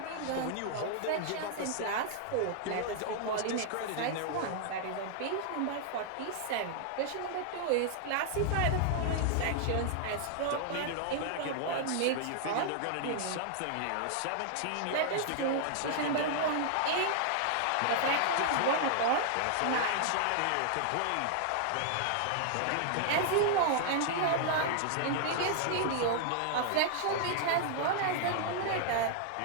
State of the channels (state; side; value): different; both; correlation -0.01